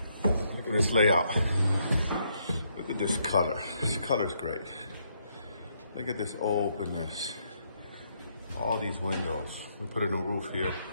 This layout. Look at this color. This color's great. Look at this openness. All these windows. We put a new roof here.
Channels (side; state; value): both; inverted; correlation -0.74